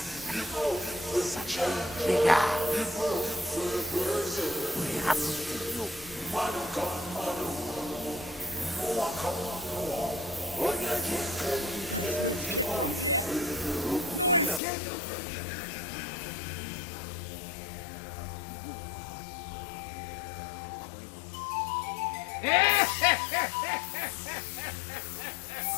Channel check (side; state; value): right; drops out; at 14.6 s